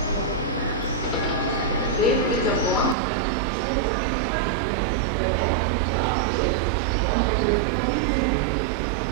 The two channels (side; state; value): left; drops out; at 3.0 s